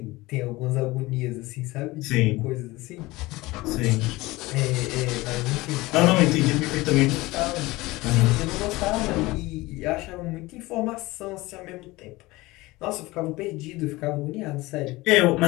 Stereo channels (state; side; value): quieter; right; 20.5 dB